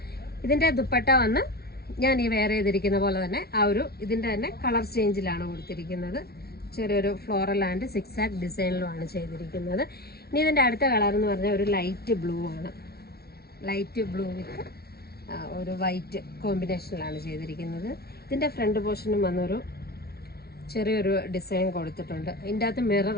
ഇതിൻ്റെ ദുപ്പട്ട വന്ന് ഞാൻ ഈ വെയർ ചെയ്തിരിക്കുന്ന പോലെ തന്നെ ഇതിൻ്റെ തന്നെ കളർ ചേഞ്ചിലാണ് കൊടുത്തിരിക്കുന്നത്. ചെറിയൊരു ഫ്ലോറൽ ആൻഡ് സിക്സാക് ഡിസൈനിലുമാണ് ചെയ്തിരിക്കുന്നത്. ഇനി ഇതിൻ്റെ അടുത്ത കളർ എന്ന് പറഞ്ഞാൽ ഒരു ലൈറ്റ് ബ്ലൂ ആണ്. ലൈറ്റ് ബ്ലൂ വിത്ത് ഒരു വൈറ്റ് കോമ്പിനേഷനിലാണ് ചെയ്തിരിക്കുന്നത്. ഇതിൻ്റെ ഫ്രണ്ട് പോർഷനും വന്നൊരു ചെറിയൊരു ഡിസൈൻ കൊടുത്തിട്ടുണ്ട്. ഇതിൻ്റെ അകത്ത്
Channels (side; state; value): right; late; 0.45 ms